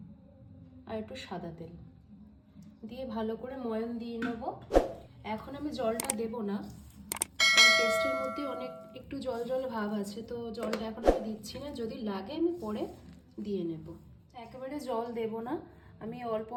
আর একটু সাদা তেল দিয়ে ভালো করে ময়ান দিয়ে নেব। এখন আমি জলটা দেব না, কারণ পেস্টের মধ্যে অনেক একটু জল জল ভাব আছে, তো জলটা এখন আমি দিচ্ছি না। যদি লাগে আমি পরে দিয়ে নেব। একেবারে জল দেব না, আমি অল্প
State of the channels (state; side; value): identical; both; correlation 1.00